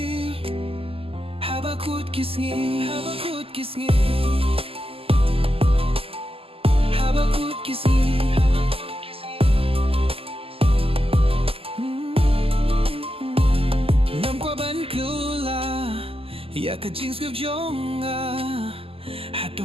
habakut kisngi habakut kisngi habakut kisngi ya ka jing skip jonga hato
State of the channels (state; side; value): late; left; 0.27 ms